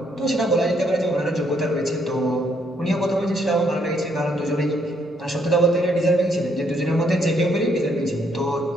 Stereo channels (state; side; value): normal; both; correlation 0.71